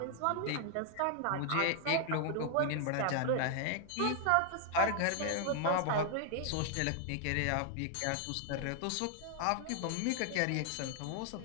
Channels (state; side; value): different; both; correlation 0.00